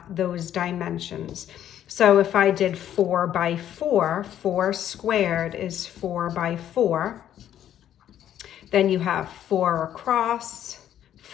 those dimensions. So if I did 4 by 4, 4 squared is 4 by 4. Then you have 4 across,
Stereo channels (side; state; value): right; quieter; 10.9 dB